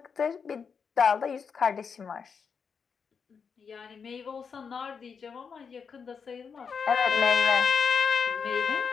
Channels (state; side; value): quieter; right; 6.1 dB